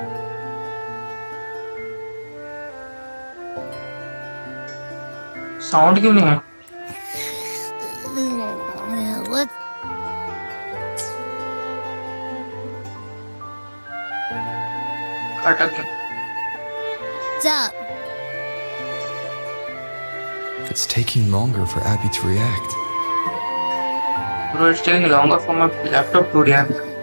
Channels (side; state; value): both; inverted; correlation -1.00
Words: साउंड क्यों नहीं है? What? अटक गया। What's up? It's taking longer for Abby to react. Bro, it's taking longer for my laptop to react.